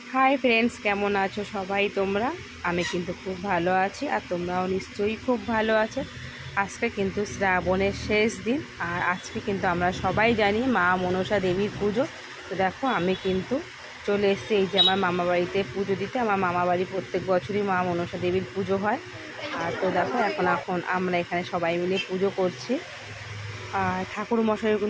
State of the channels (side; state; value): both; identical; correlation 1.00